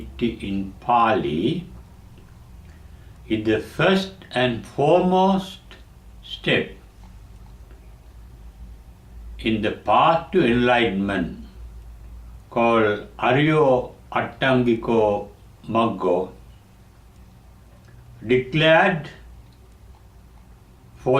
in Pali, is the first and foremost step in the path to enlightenment, called Aryo Attangiko Maggo, declared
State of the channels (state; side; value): identical; both; correlation 1.00